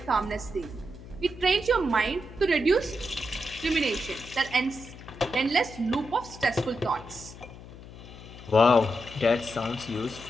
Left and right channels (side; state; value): left; noise; hum, 16 dB below the sound